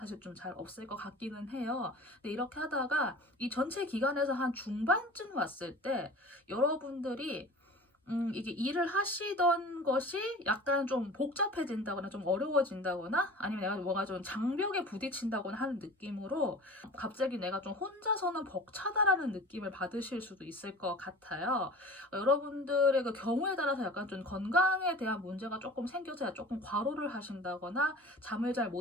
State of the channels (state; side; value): normal; both; correlation 0.40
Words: 좀 잘 없을 것 같기는 해요. 근데 이렇게 하다가 이 전체 기간에서 한 중반쯤 왔을 때 여러분들이 이게 일을 하시던 것이 약간 좀 복잡해진다거나 좀 어려워진다거나 아니면 내가 뭔가 좀 장벽에 부딪힌다거나 하는 느낌으로 갑자기 내가 좀 혼자서는 벅차다라는 느낌을 받으실 수도 있을 것 같아요. 여러분들의 그 경우에 따라서 약간 좀 건강에 대한 문제가 조금 생겨서 조금 과로를 하신다거나 잠을 잘